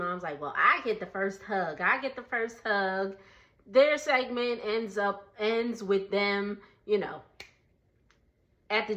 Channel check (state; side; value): identical; both; correlation 1.00